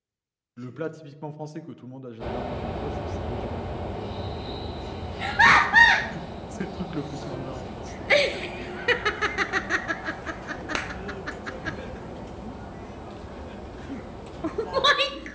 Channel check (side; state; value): both; identical; correlation 1.00